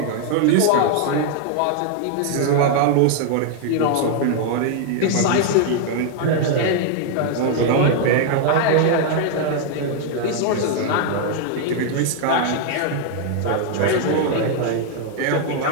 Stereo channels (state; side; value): different; both; correlation 0.00